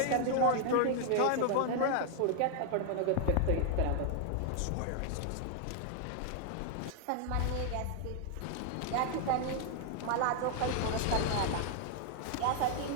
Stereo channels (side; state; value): both; different; correlation 0.00